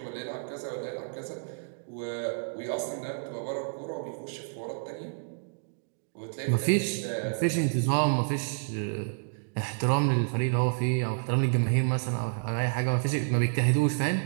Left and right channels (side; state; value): left; silent; digital silence